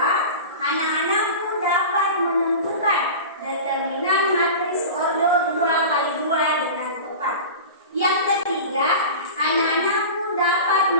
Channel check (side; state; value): both; inverted; correlation -0.32